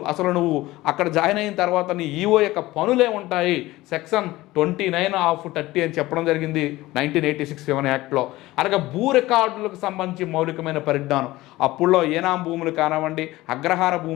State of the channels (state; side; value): quieter; right; 18.1 dB